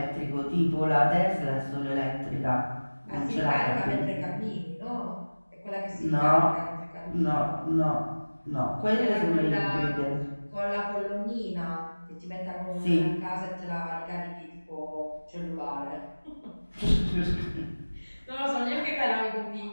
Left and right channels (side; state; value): both; inverted; correlation -1.00